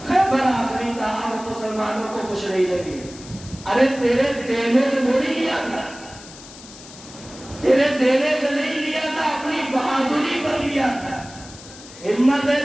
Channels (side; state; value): left; noise; hiss, 18 dB below the sound